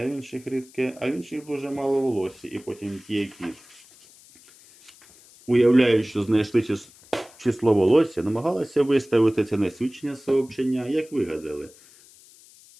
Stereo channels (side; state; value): left; noise; hiss, 25 dB below the sound